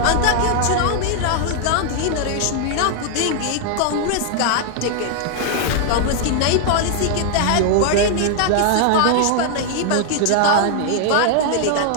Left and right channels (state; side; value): different; both; correlation 0.00